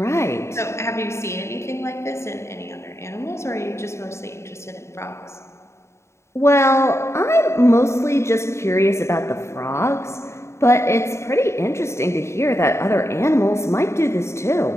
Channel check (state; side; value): late; right; 0.13 ms